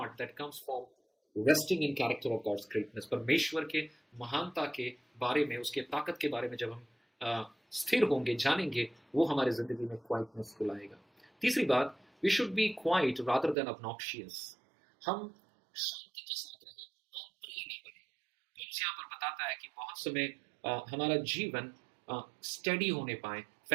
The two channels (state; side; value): drops out; left; at 13.6 s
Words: that comes from resting in character of God's greatness. परमेश्वर के महानता के बारे में, उसके ताकत के बारे में जब हम स्थिर होंगे, जानेंगे, वो हमारे जिंदगी में क्वाइटनेस को लाएगा। तीसरी बात, we should be quiet rather than obnoxious. हम शांति के साथ रहें, हम प्रिय नहीं बने। तो यहाँ पर बताता है कि बहुत समय हमारा जीवन स्टडी होने पाए,